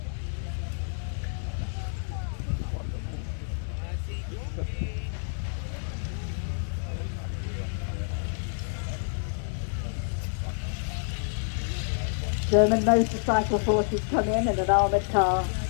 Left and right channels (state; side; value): silent; right; digital silence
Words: German motorcycle forces come in and an armoured car.